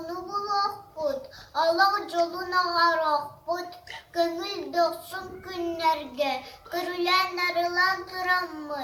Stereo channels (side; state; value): both; identical; correlation 1.00